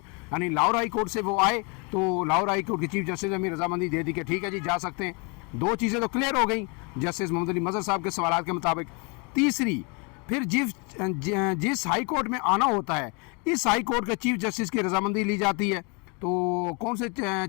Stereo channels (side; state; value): right; quieter; 32.3 dB